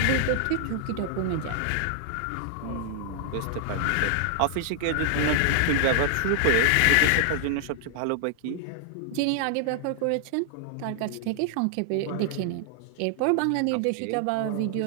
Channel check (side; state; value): both; different; correlation -0.01